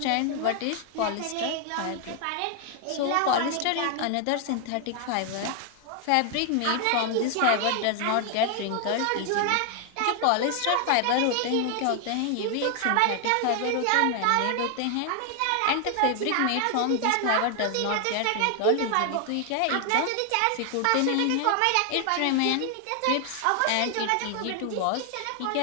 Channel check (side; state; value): both; different; correlation 0.00